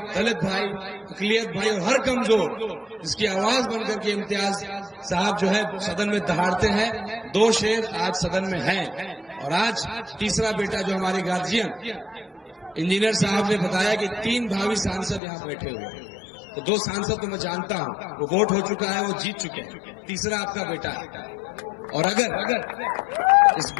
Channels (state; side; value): drops out; right; at 15.2 s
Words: दलित भाई, अकलियत भाई और हर कमजोर जिसकी आवाज बनकर के इम्तियाज साहब जो है सदन में दहाड़ते हैं। 2 शेर आज सदन में हैं। और आज तीसरा बेटा जो हमारे गार्जियन इंजीनियर साहब ने बताया कि 3 भावी सांसद यहाँ बैठे हुए हैं। तो 2 सांसद तो मैं जानता हूँ, वो वोट हो चुका है, वो जीत चुके हैं। तीसरा आपका बेटा है। और अगर इस